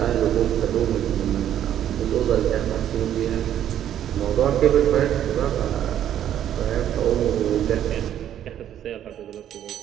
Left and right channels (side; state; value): left; quieter; 10.7 dB